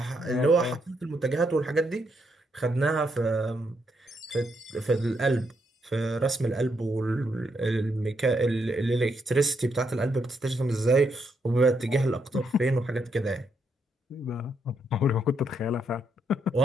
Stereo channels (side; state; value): both; normal; correlation 0.77